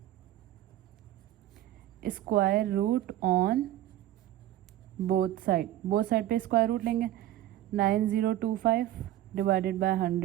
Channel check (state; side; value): quieter; left; 13.6 dB